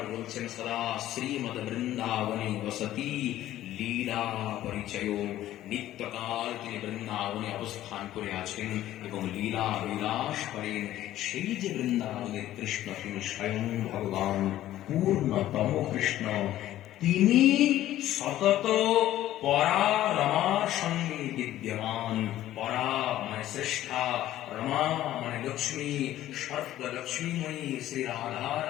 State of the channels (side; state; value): right; quieter; 13.6 dB